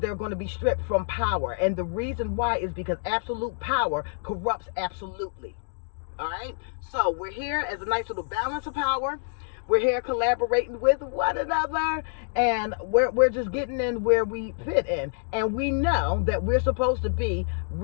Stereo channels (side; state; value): right; silent; digital silence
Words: going to be stripped from power. And the reason why is because absolute power corrupts absolutely. All right, so we're here as a nice little balance of power. We're here collaborating with one another, and we're just getting in where we fit in. And we know that we're supposed to be